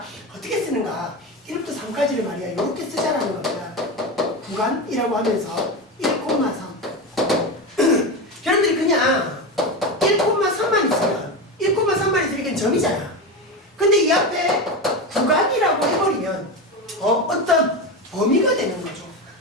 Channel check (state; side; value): normal; both; correlation 0.19